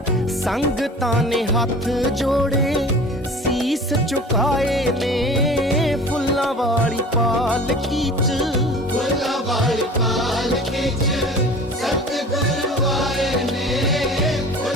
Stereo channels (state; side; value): normal; both; correlation 0.41